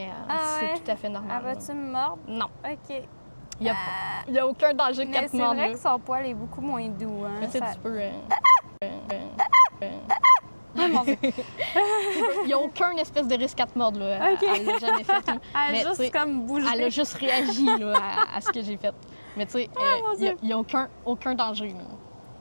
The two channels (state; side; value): inverted; both; correlation -1.00